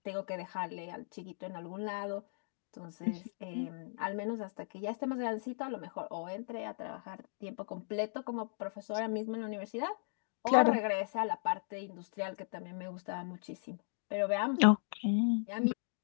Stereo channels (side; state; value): right; silent; digital silence